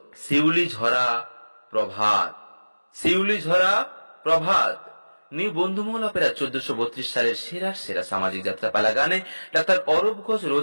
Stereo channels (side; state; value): both; inverted; correlation -1.00